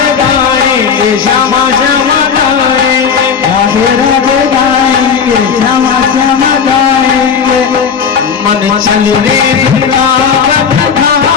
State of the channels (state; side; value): quieter; right; 6.5 dB